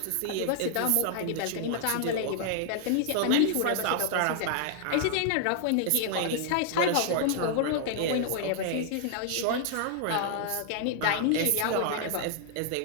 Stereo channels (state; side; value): different; both; correlation 0.00